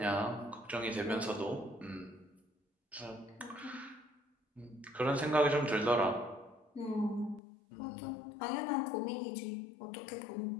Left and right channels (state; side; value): drops out; right; at 7.4 s